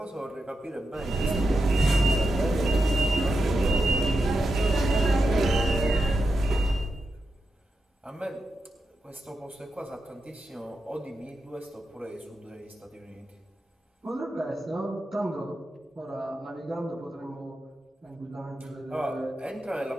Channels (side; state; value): both; normal; correlation 0.88